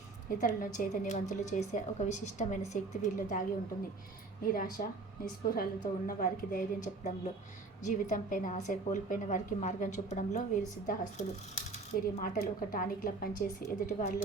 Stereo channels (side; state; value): left; quieter; 3.7 dB